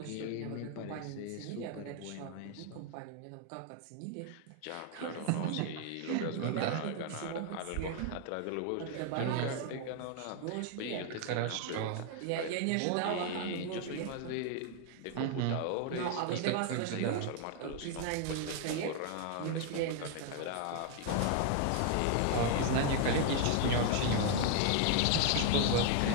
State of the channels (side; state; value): both; different; correlation 0.00